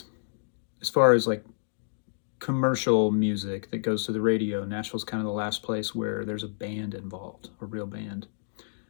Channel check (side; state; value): right; silent; digital silence